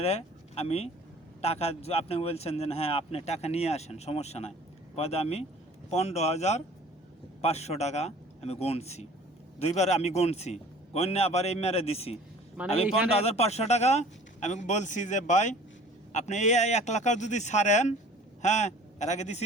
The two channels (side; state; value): both; normal; correlation 0.47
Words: আমি টাকা, আপনি বলছেন যে হ্যাঁ আপনি টাকা নিয়ে আসেন, সমস্যা নাই। পরে আমি 15,500 টাকা আমি গণছি, 2বার আমি গণছি, গণে আবার এই মেরে দিছি। আমি 15,500 টাকা আমি বলছি যে ভাই আপনি এই 1 লাখ যদি ছাড়েন, হ্যাঁ এর আগে